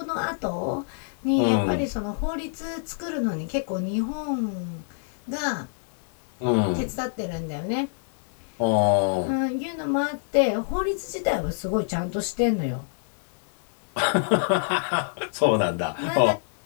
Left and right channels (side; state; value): right; silent; digital silence